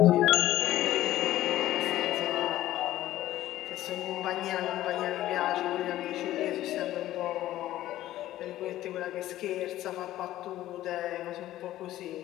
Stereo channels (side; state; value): right; quieter; 14.3 dB